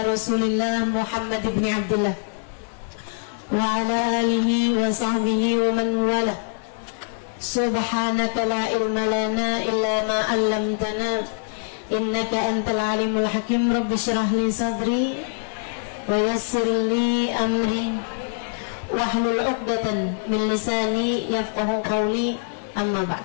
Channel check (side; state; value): right; silent; 61 dB below the other